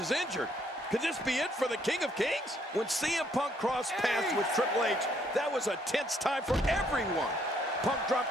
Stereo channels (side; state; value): both; normal; correlation 0.68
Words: injured. Could this be it for the King of Kings? When CM Punk crossed paths with Triple H, that was a tense time for everyone. Punk dropped